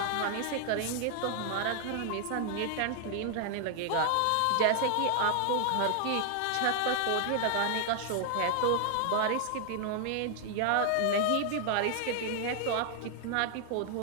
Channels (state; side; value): different; both; correlation 0.00